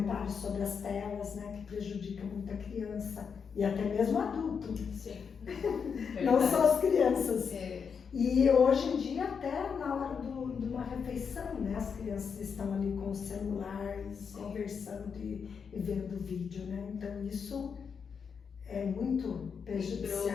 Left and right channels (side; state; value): right; quieter; 6.3 dB